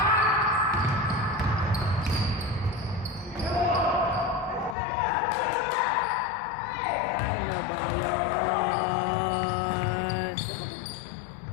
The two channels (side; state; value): right; drops out; at 4.8 s